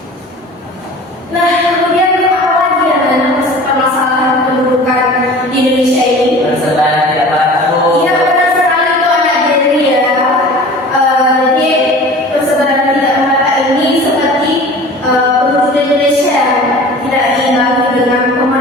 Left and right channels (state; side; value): normal; both; correlation 0.41